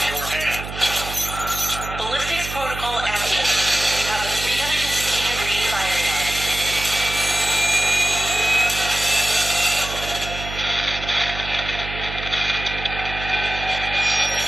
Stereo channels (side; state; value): right; noise; hum, 9 dB below the sound